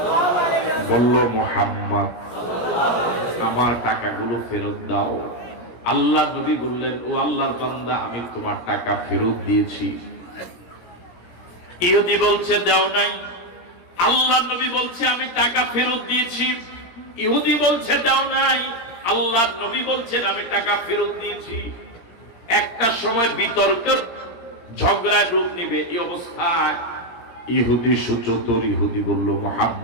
বলল মুহাম্মদ আমার টাকাগুলো ফেরত দাও। আল্লাহ নবী বললেন, ও আল্লাহর বান্দা, আমি তোমার টাকা ফেরত দিয়েছি। ইহুদি বলছে দাও নাই। আল্লাহ নবী বলছে আমি টাকা ফেরত দিয়েছি। ইহুদি বলছে দাও নাই। আল্লাহ নবী বলছেন আমি টাকা ফেরত দিয়েছি। একটা সময় বিতর্কের ঝগড়ার রূপ নিবে। এই অবস্থায় ইহুদি সুচতুর ইহুদি বলল,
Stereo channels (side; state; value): right; late; 17 ms